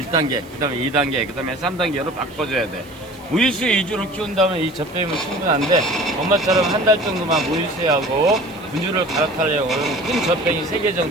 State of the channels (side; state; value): right; noise; hiss, 25 dB below the sound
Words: 1단계, 그 다음에 2단계, 그 다음에 3단계로 바꿔줘야 돼. 모유수유 위주로 키운다면 이 젖병이면 충분한데 엄마처럼 한 달 정도만 모유수유하고 분유를 갈아타려고 하면 큰 젖병이 3개